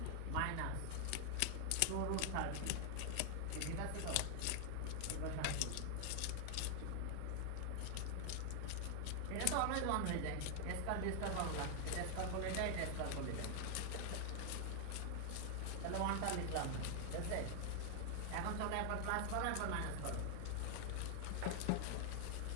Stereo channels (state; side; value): different; both; correlation 0.00